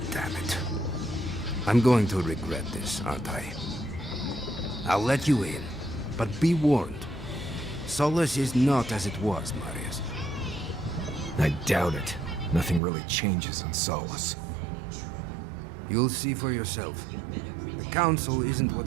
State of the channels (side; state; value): left; drops out; at 12.8 s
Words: damn it. I'm going to regret this, aren't I? I'll let you in, but be warned. Solace is not as it was, Marius. I doubt it. Nothing really changes in Solace. You'll see for yourself. The council isn't